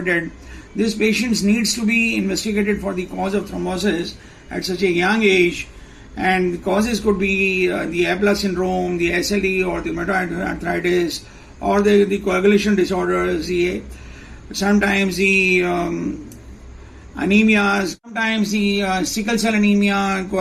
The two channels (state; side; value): identical; both; correlation 1.00